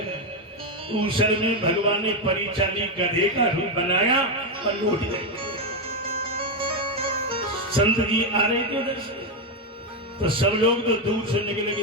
ऊसर में भगवान ने परिचाली गधे का रूप बनाया और लौट गए। संत जी आ रहे थे उधर से, तो सब लोग तो दूर से निकले कि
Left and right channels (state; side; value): normal; both; correlation 0.07